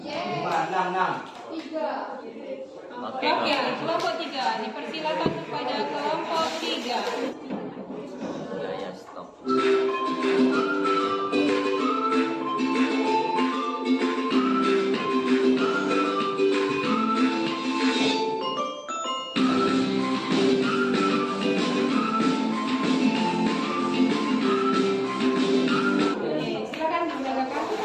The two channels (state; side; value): identical; both; correlation 1.00